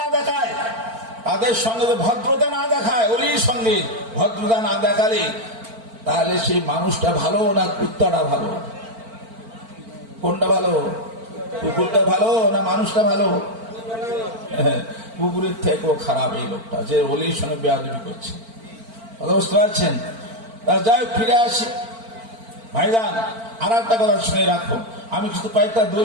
দেখায়, তাদের সঙ্গে যদি ভদ্রতা না দেখায়, অলির সঙ্গে ভদ্রতা না দেখালে তাহলে সেই মানুষটা ভালো না কুত্তাটা ভালো? কোনটা ভালো? কুকুরটা ভালো না মানুষটা ভালো? কুকুরের থেকেও খারাপ এই লোকটা, যে অলির সঙ্গে বেয়াদবি করছে। কথা বুঝতে পারছেন? যাই হোক, ফিরে আসি ভাইজান। আর একটা কথা শুনে রাখো, আমি কিছু কয়েকটা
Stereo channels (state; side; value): late; left; 4.4 ms